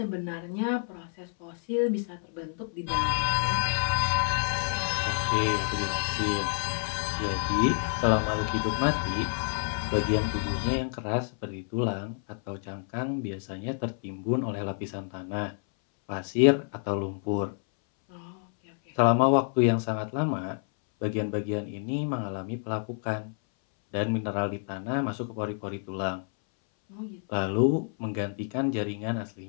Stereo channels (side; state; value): right; silent; 59 dB below the other